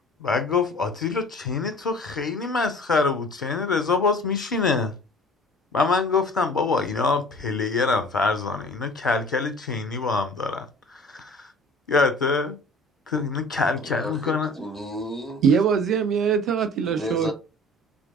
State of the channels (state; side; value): normal; both; correlation 0.46